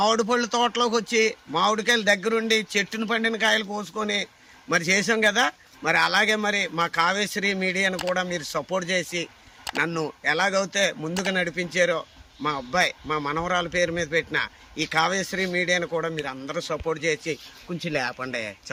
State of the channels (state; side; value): identical; both; correlation 1.00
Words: పళ్ళు తోటలోకి వచ్చి మామిడికాయలు దగ్గరుండి చెట్టును పండిన కాయలు కోసుకొని మరి చేసాం కదా. మరి అలాగే మరి మా కావ్యశ్రీ మీడియాను కూడా మీరు సపోర్ట్ చేసి నన్ను ఎలాగైతే ముందుకు నడిపించారో మా అబ్బాయి మా మనవరాల పేరు మీద పెట్టిన ఈ కావ్యశ్రీ మీడియాను కూడా మీరు అందరూ సపోర్ట్ చేసి కొంచెం లేపండి